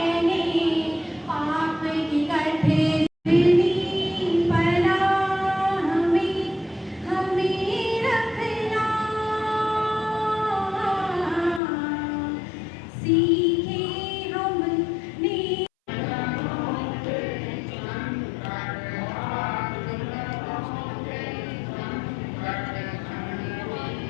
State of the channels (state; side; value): drops out; right; at 11.6 s